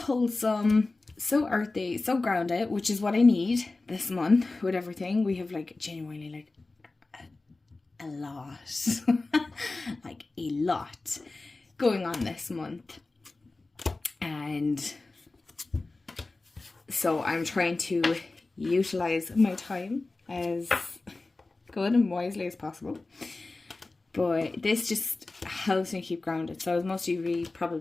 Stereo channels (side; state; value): right; quieter; 3.3 dB